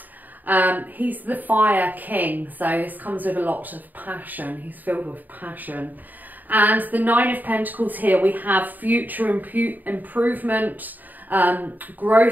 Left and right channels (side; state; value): left; late; 0.086 ms